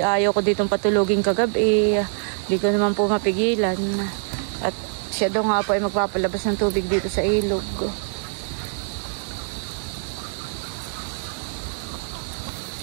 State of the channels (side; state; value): left; silent; digital silence